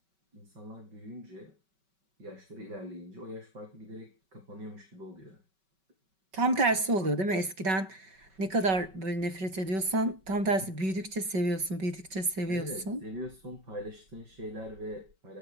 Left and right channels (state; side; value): late; left; 5.3 ms